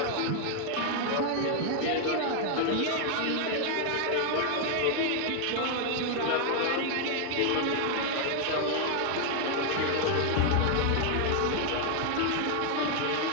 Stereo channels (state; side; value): different; both; correlation 0.00